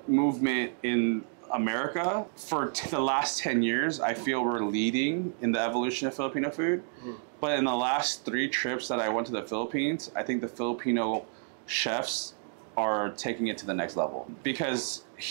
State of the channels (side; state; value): left; silent; 58 dB below the other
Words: movement in America for the last 10 years, I feel we're leading in the evolution of Filipino food. But in the last 3 trips that I went to the Philippines, I think the Filipino chefs are taking it to the next level. Because